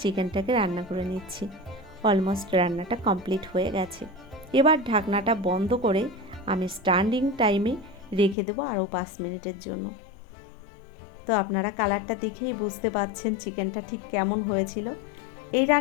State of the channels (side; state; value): right; drops out; at 8.3 s